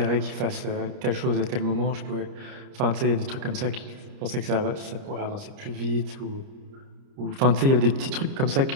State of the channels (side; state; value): left; late; 30 ms